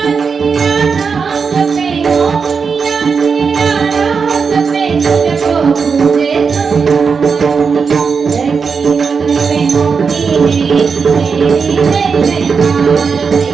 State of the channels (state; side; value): quieter; left; 5.5 dB